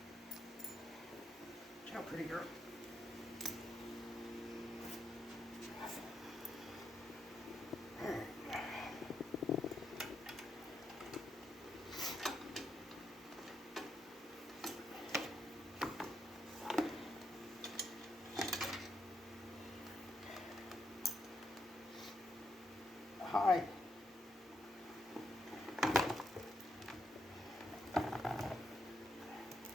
Ciao, pretty girl. Hi.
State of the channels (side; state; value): both; normal; correlation 0.80